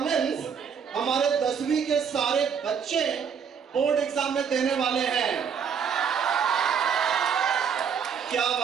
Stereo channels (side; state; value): left; quieter; 7.0 dB